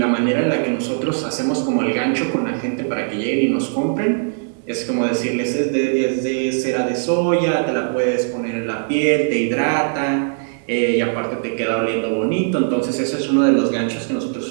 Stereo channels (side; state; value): left; silent; 66 dB below the other